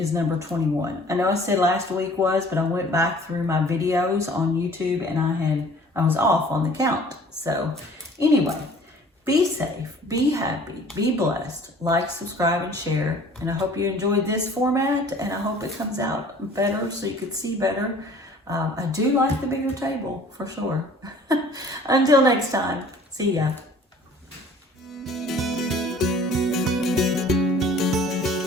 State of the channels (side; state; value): both; normal; correlation 0.51